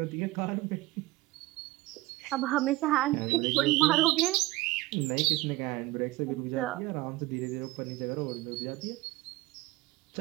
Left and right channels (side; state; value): left; quieter; 19.1 dB